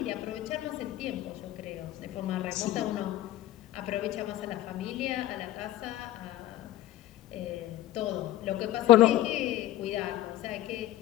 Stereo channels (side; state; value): right; quieter; 13.9 dB